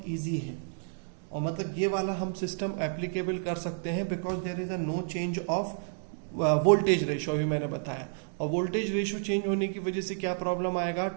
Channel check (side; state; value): left; silent; digital silence